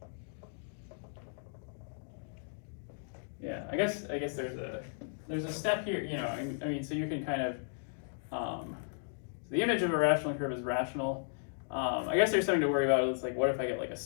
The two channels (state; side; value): silent; right; digital silence